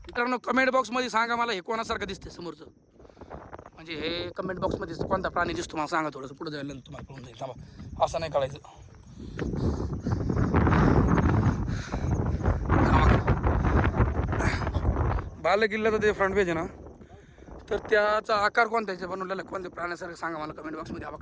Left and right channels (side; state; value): both; identical; correlation 1.00